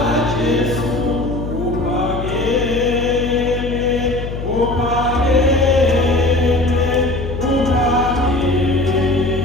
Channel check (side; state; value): left; noise; hum, 6 dB below the sound